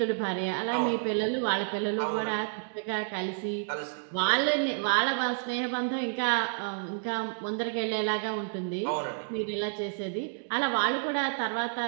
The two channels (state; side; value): silent; left; digital silence